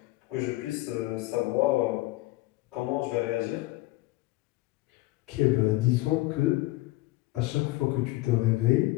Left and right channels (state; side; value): quieter; right; 19.7 dB